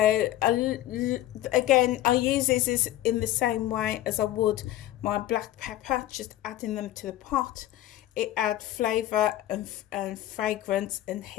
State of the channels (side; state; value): right; quieter; 14.2 dB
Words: again, I use these in the same way as I would my black pepper, just adding them to the pot. It adds flavour and fragrance and